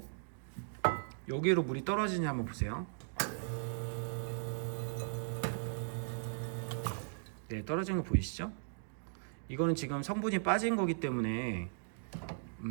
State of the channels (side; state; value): left; silent; digital silence